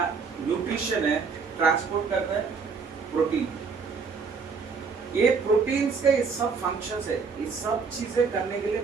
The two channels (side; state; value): left; quieter; 5.2 dB